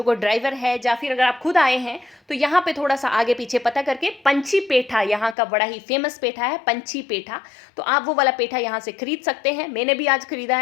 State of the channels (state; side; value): drops out; right; at 5.4 s